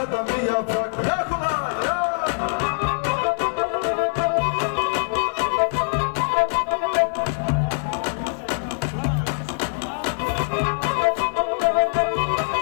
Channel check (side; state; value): right; silent; 63 dB below the other